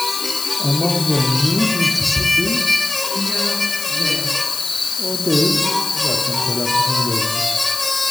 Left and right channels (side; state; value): left; noise; hiss, 6 dB below the sound